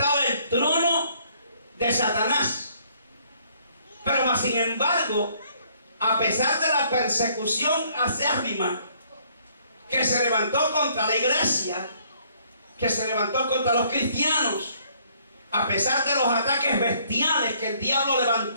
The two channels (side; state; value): both; inverted; correlation -0.64